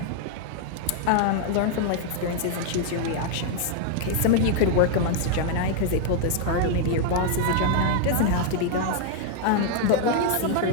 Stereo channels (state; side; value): different; both; correlation 0.00